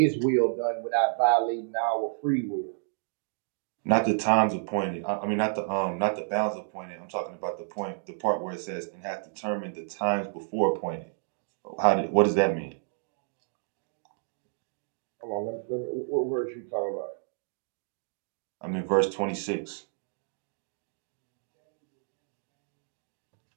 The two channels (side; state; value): left; silent; digital silence